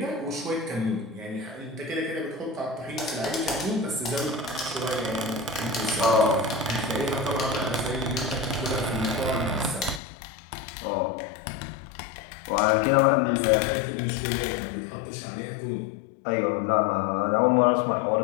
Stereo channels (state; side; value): drops out; right; at 10.0 s